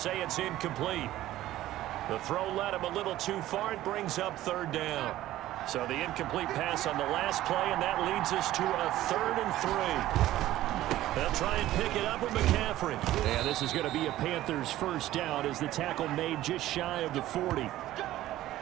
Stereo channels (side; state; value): left; quieter; 14.7 dB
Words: it's incomplete. The throw led him a little too far. It brings up 3rd down. So the incomplete pass on the last play, and that leads us to a 3rd and 3. They'll try and pick it up with McCaffrey. And this is going to be a Panthers first down as the tackle made just shy of the 40.